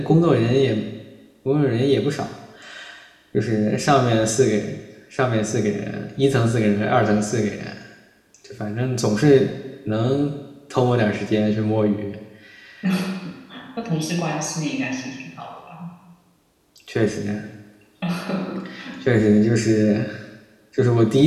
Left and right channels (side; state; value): both; identical; correlation 1.00